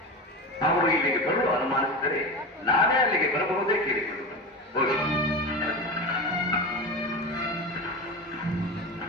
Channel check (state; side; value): normal; both; correlation 0.25